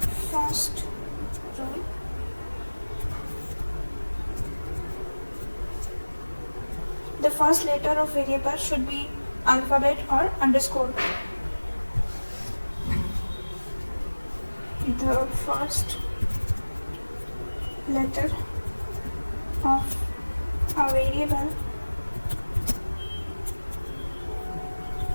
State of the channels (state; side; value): inverted; both; correlation -1.00